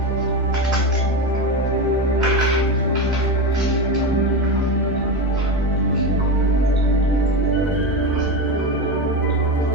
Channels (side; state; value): both; normal; correlation 0.19